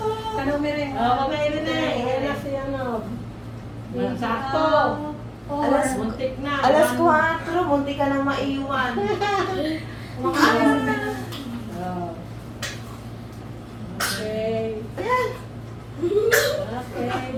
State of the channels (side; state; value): both; identical; correlation 1.00